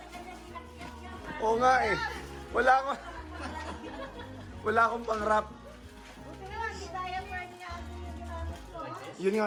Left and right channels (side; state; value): both; identical; correlation 1.00